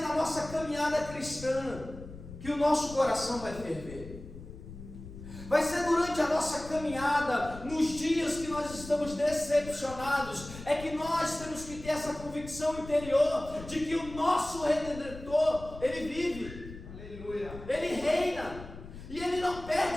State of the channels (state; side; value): noise; left; rumble, 14 dB below the sound